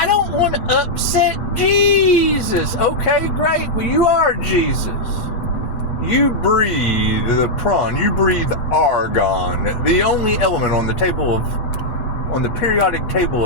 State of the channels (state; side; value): late; right; 9.0 ms